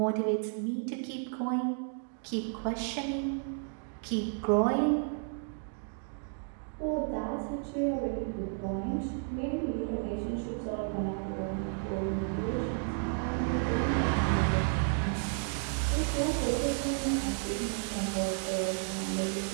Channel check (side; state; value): left; silent; 56 dB below the other